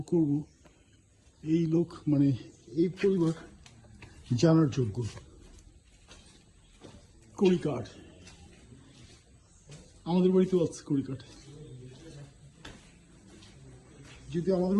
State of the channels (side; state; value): both; identical; correlation 1.00